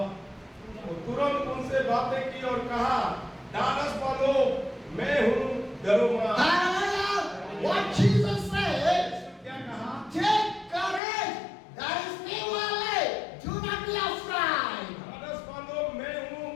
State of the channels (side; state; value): right; drops out; at 11.0 s